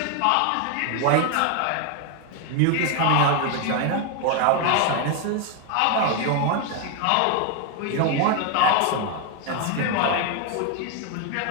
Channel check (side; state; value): both; different; correlation 0.01